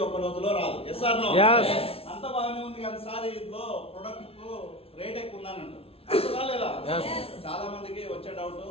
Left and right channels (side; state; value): right; late; 0.27 ms